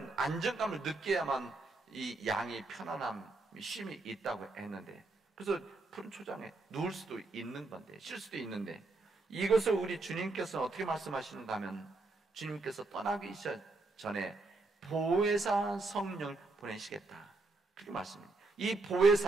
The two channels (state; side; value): quieter; left; 3.2 dB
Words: 안정감을 느껴야만 이 양이 편안함, 쉼이 있다고 했는데, 그래서 푸른 초장에 누울 수도 있는 건데, 쉴 수도 있는데, 이것을 우리 주님께서 어떻게 말씀하시는가 하면, 주님께서 떠나기 전에 보혜사 성령을 보내시겠다, 그렇게 말씀합니다. 이